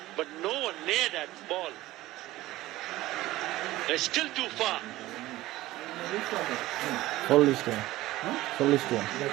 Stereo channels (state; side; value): quieter; left; 16.9 dB